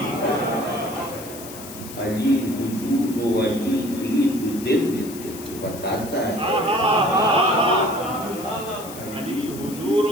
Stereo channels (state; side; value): noise; left; hiss, 14 dB below the sound